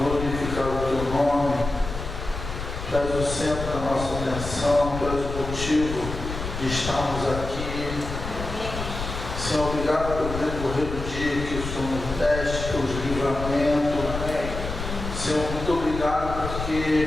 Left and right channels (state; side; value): noise; left; rumble, 7 dB below the sound